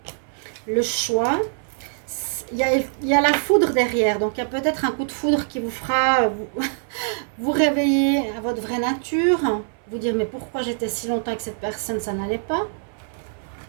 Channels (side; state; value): left; silent; 58 dB below the other